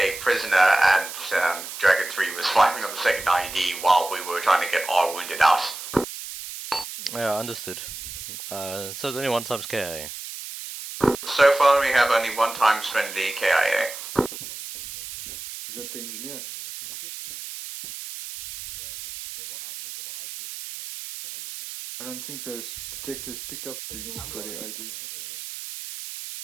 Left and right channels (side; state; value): right; noise; hiss, 10 dB below the sound